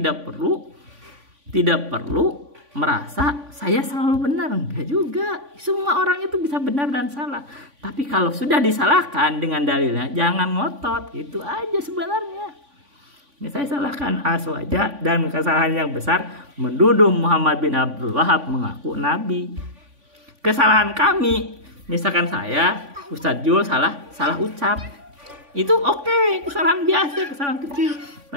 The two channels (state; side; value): late; left; 3.5 ms